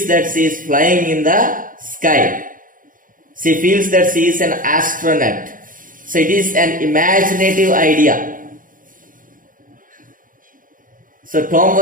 that she is flying in the sky. She feels that she is an astronaut. So it is an imaginative idea. So Tom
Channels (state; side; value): late; left; 0.39 ms